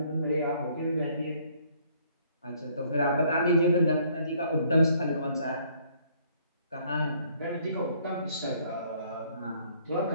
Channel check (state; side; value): inverted; both; correlation -0.63